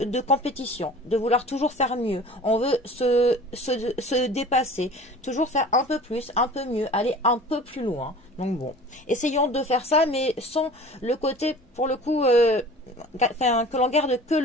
compétition, de vouloir toujours faire mieux. On veut se dépasser, toujours faire un peu plus, un peu mieux, aller un peu plus loin. Donc bon, essayons de faire ça, mais sans le côté, pour le coup, que l'on garde que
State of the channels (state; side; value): normal; both; correlation 0.42